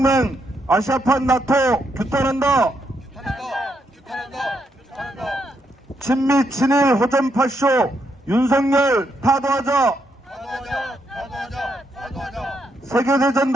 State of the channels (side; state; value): both; normal; correlation 0.78